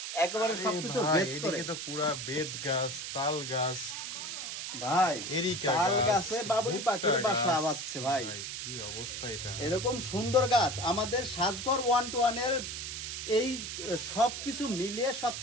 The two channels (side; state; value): right; noise; hiss, 6 dB below the sound